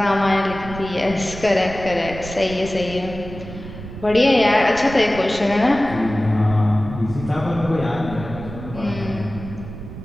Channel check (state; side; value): noise; right; rumble, 12 dB below the sound